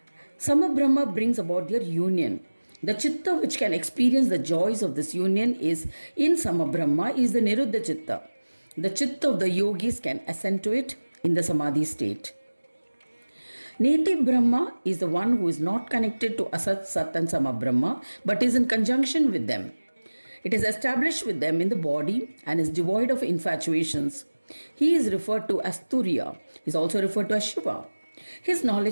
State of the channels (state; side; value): inverted; both; correlation -1.00